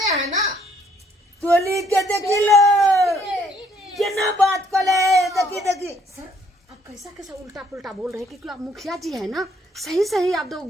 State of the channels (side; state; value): both; normal; correlation 0.66